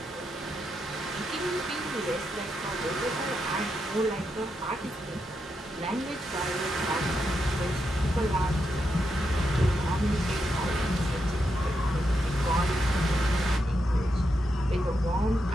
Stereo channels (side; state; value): both; normal; correlation 0.84